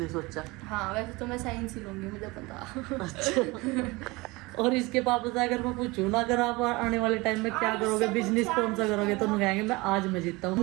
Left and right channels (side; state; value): left; quieter; 23.2 dB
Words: सोचा? हाँ, वैसे तो मैं साइंस ही लूंगी, मुझे पता। अच्छा। और इसके पापा से अगर मैं पूछूं ना, अगर आप आने वाले टाइम में क्या करोगे, बिजनेस कौन सा करोगे, तो उन्हें कहेंगे मैं आज मैं जीतता हूँ,